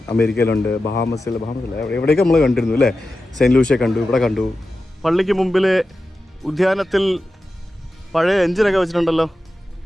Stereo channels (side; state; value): both; normal; correlation 0.92